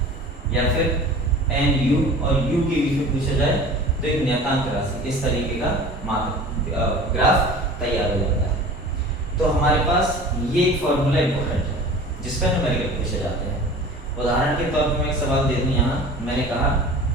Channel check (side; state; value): both; normal; correlation 0.41